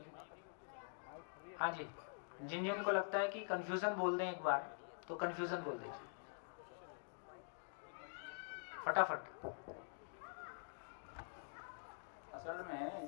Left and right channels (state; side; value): silent; right; digital silence